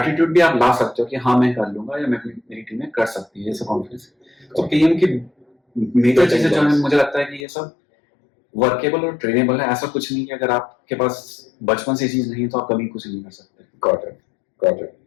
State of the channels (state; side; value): drops out; right; at 7.5 s